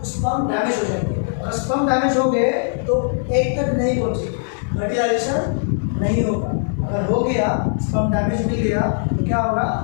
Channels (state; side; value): silent; right; digital silence